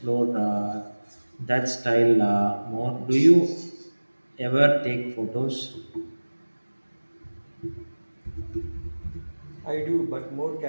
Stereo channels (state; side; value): inverted; both; correlation -1.00